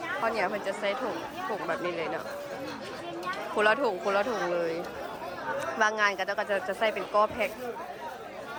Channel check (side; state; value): both; identical; correlation 1.00